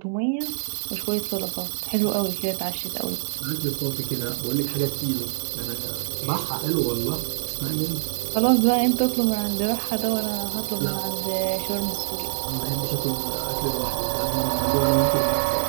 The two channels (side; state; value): left; silent; digital silence